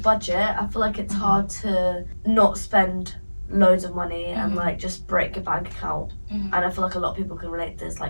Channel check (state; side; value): inverted; both; correlation -1.00